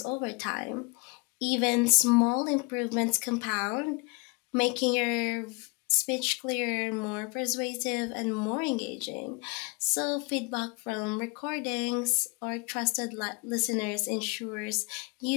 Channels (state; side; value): quieter; right; 30.6 dB